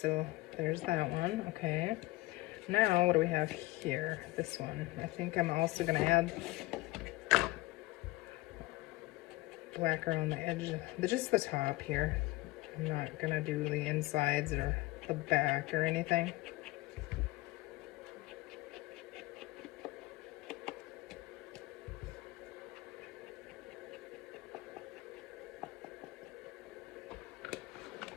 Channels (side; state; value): right; quieter; 20.1 dB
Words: there's that one. Okay. Now, what do we have here? This one. I think I'm also going to add black around the edge, just the top here. I'm not going to do the insides or the back or anything.